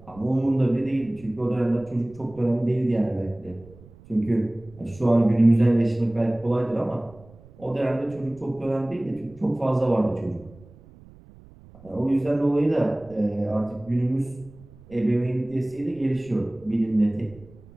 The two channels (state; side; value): noise; right; rumble, 23 dB below the sound